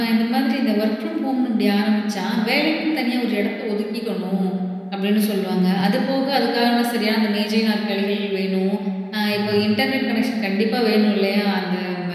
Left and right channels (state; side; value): identical; both; correlation 1.00